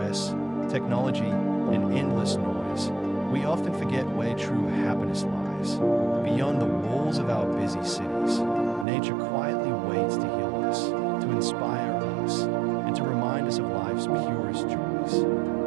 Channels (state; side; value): drops out; left; at 8.8 s